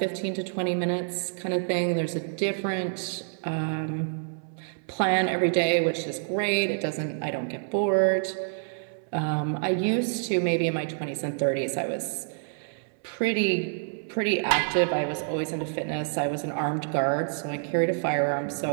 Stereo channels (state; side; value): silent; left; 60 dB below the other